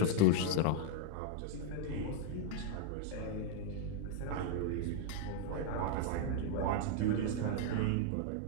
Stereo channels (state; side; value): different; both; correlation -0.01